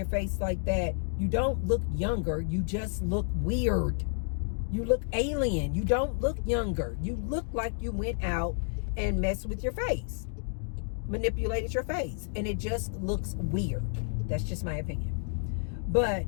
face like that, you don't look younger. You just look weird. You look alien. You don't look younger. You look like you went out and messed with your face. Manipulated your face. And it just looks weird. That's just my opinion. But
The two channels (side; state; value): right; silent; 57 dB below the other